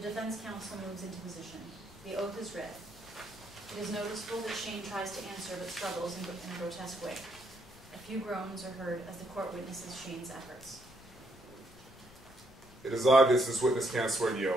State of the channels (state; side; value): noise; left; rumble, 22 dB below the sound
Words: counsel moves into position. The oath is read. It is noticeable that Shane tries to answer but struggles in a grotesque way. A few groans are heard as the court witnesses Shane's efforts. It is obvious this witness can't swear the